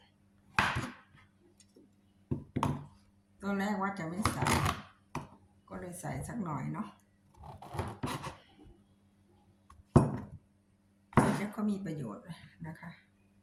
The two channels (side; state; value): both; identical; correlation 1.00